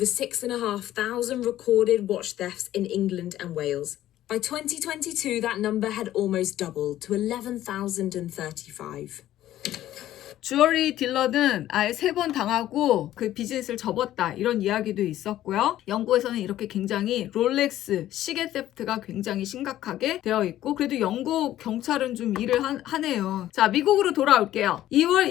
6,500 recorded watch thefts in England and Wales. By 2022, that number had almost doubled to 11,035. 주얼리 딜러는 아예 3번 당하고 그 비즈니스를 접었다 이런 이야기도 있었고요. 영국에서는 이렇게 굉장히 롤렉스 시계 세프트가 굉장히 심각하게 되어 있고 그래도 영국 경찰은 좀 일을 하네요. 자, 미국으로 돌아올게요. 2월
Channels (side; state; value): right; quieter; 13.3 dB